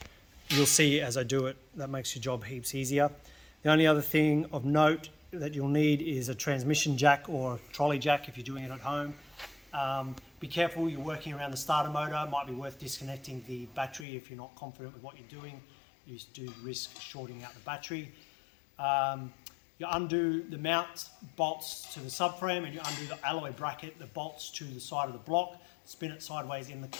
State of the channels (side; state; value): right; drops out; at 14.1 s